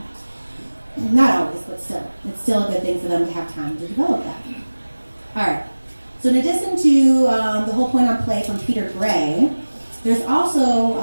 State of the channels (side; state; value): both; inverted; correlation -1.00